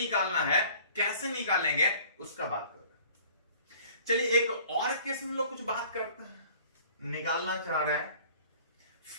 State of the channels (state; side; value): inverted; both; correlation -0.50